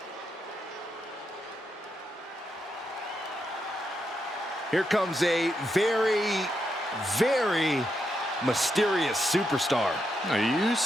Here comes a very, very mysterious superstar. Now, you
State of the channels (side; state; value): both; normal; correlation 0.82